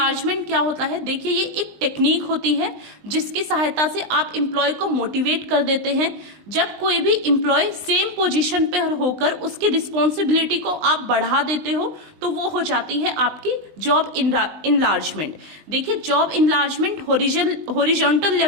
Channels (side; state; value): left; late; 20 ms